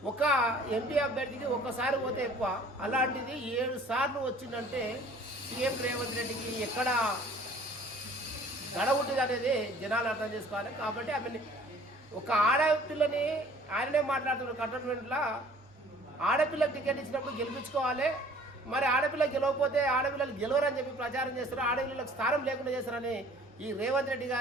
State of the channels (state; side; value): normal; both; correlation 0.52